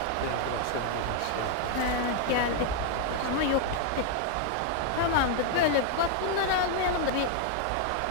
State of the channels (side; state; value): both; different; correlation 0.00